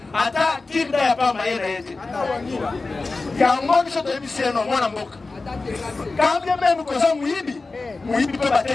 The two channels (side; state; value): right; quieter; 3.7 dB